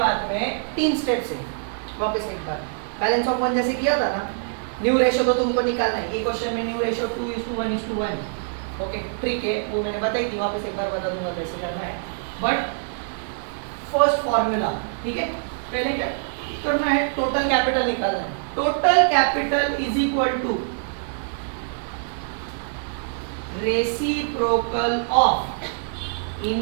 में 3 स्टेप से वापस एक बार बैलेंस ऑफ वन जैसे किया था ना, न्यू रेशियो तो तुमको निकालना है। ये क्वेश्चन में न्यू रेशियो 2:1:1। ओके ट्रिक है, वो मैंने बताई थी, वापस एक बार बता दूंगा कैसे करना है। बट फर्स्ट फॉर्मूला, ठीक है, पहले क्या करना है, टोटल कैपिटल निकालना है। Total capital is equal to reciprocal of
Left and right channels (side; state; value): left; silent; digital silence